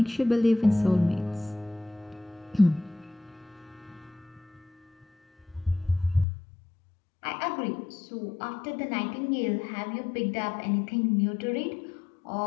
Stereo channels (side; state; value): right; drops out; at 6.2 s